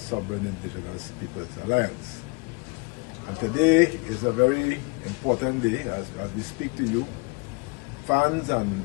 Indigenous Peoples Alliance. And today is a very important day as we speak to you, fans and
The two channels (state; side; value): quieter; right; 29.2 dB